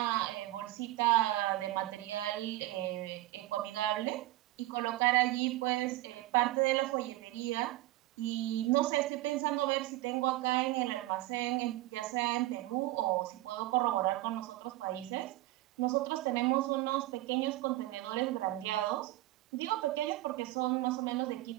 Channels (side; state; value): left; quieter; 17.3 dB